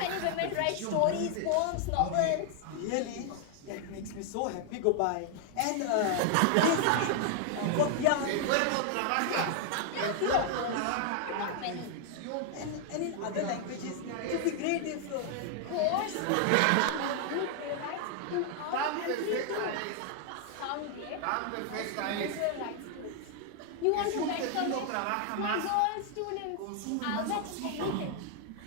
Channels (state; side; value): different; both; correlation 0.00